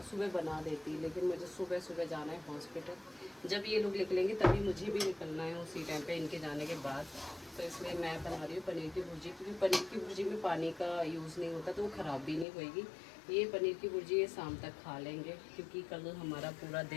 सुबह बना देती, लेकिन मुझे सुबह सुबह जाना है हॉस्पिटल। जब ये लोग निकलेंगे तभी मुझे भी निकलना है उसी टाइम पे, इनके जाने के बाद। तो इसलिए मैं बना रही हूँ पनीर की भुर्जी, क्योंकि पनीर की भुर्जी में पानी का यूज़ नहीं होता, तो वो ख़राब भी नहीं होएगी। ये पनीर की भुर्जी ये शाम तक खा लेंगे, क्योंकि कल हमारा पूरा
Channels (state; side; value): drops out; right; at 12.5 s